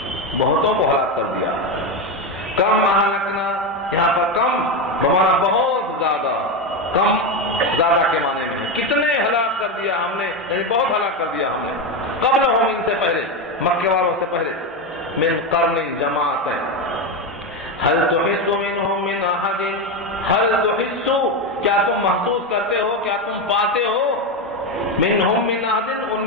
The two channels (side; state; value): both; normal; correlation 0.13